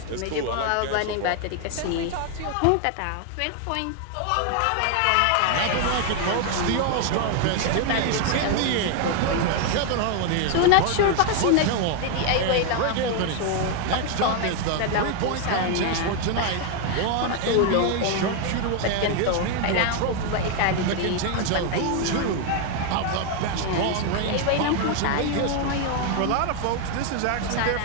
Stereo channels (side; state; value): both; different; correlation 0.01